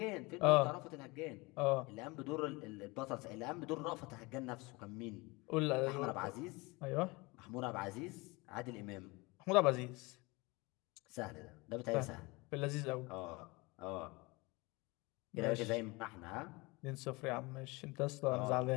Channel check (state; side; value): quieter; right; 24.9 dB